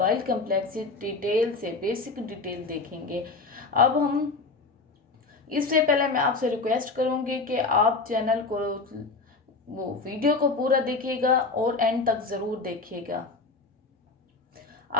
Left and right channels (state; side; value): quieter; right; 3.9 dB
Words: कम्प्लेक्सेस डिटेल से, बेसिक डिटेल देखेंगे। अब हम इससे पहले मैं आपसे रिक्वेस्ट करूँगी कि आप चैनल को वो वीडियो को पूरा देखिएगा और एंड तक ज़रूर देखिएगा।